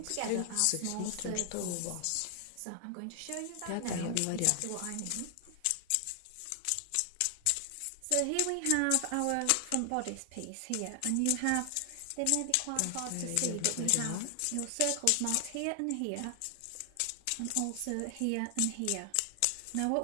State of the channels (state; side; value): different; both; correlation 0.00